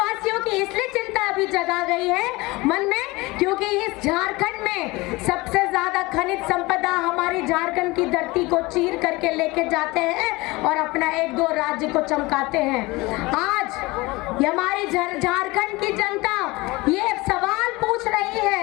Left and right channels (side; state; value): right; quieter; 22.4 dB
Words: की इसलिए चिंता अभी जगा गई है मन में, क्योंकि इस झारखंड में सबसे ज्यादा खनिज संपदा हमारी झारखंड की धरती को चीर करके लेके जाते हैं और अपना 1-2 राज्य को चमकाते हैं। आज हमारी झारखंड की जनता ये सवाल पूछ रही